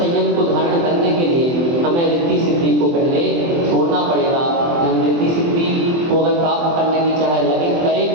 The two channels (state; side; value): late; left; 24 ms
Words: को धारण करने के लिए हमें रिद्धि सिद्धि को पहले छोड़ना पड़ेगा। हम रिद्धि सिद्धि को अगर प्राप्त करने की चाहे लगे